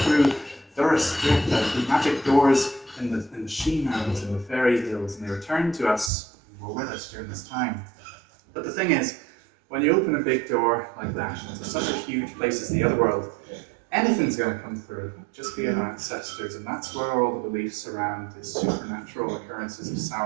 the magic doors in the Shea Mounds and the fairy hills, and they returned to us and were with us during this time. But the thing is, when you open a big door like that into such a huge place as the other world, anything's going to come through, just be our ancestors, and that's where all the beliefs around the supernatural occurrences of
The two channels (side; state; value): left; drops out; at 6.1 s